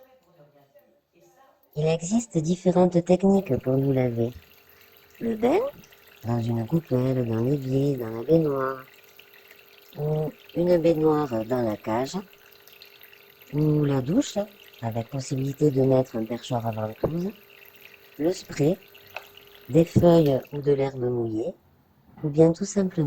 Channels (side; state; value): both; identical; correlation 1.00